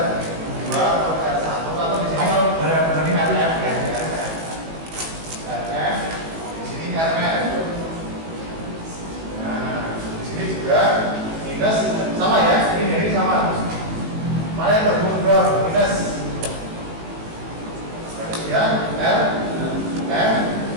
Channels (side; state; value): left; late; 18 ms